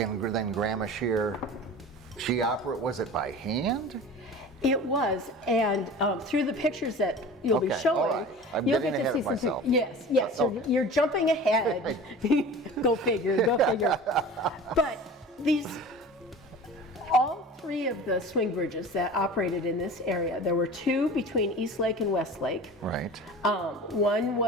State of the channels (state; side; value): normal; both; correlation 0.38